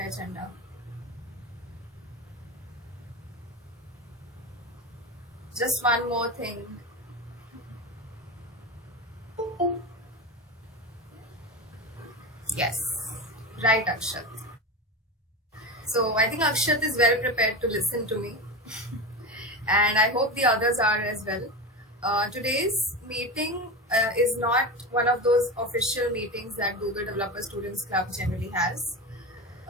agenda. Just one more thing. Yes, right, Akshat. So I think Akshat is well prepared to listen to me, and I hope the others are as well. Today's meeting is not one of those official meetings that Google Developer Students Club generally has.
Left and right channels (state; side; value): normal; both; correlation 0.22